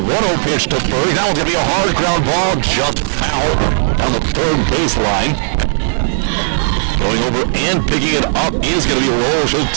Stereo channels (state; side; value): silent; left; 66 dB below the other